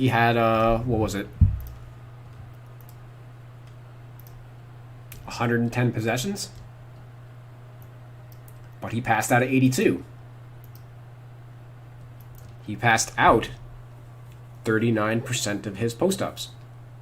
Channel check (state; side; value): identical; both; correlation 1.00